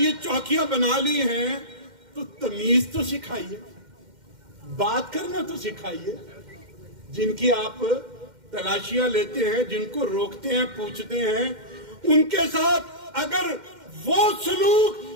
چوکیاں بنا لی ہیں تو تمیز تو سکھائیے، بات کرنا تو سکھائیے۔ جن کی آپ تلاشیاں لیتے ہیں، جن کو روکتے ہیں، پوچھتے ہیں، ان کے ساتھ اگر وہ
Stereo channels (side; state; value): left; late; 2.1 ms